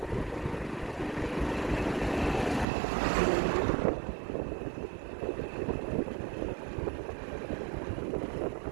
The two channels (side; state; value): left; drops out; at 2.7 s